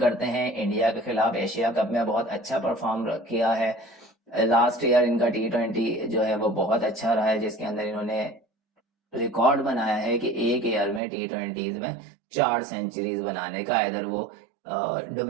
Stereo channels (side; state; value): left; drops out; at 11.0 s